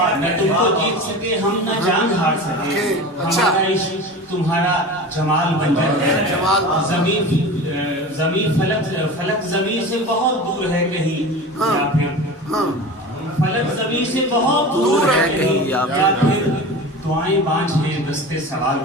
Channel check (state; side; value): normal; both; correlation 0.32